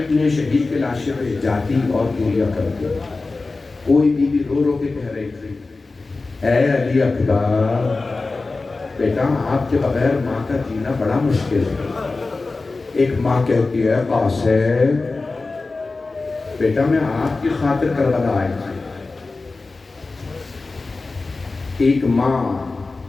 شہید کے لاشے پہ جاتی اور گریا کرتی. کوئی بیوی رو رو کے کہہ رہی تھی، اے علی اکبر، بیٹا آپ کے بغیر ماں کا جینا بڑا مشکل ہے. ایک ماں کہتی ہے، قاسم بیٹا میں آپ کی خاطر کربلا آئی تھی. ایک ماں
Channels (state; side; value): quieter; right; 3.6 dB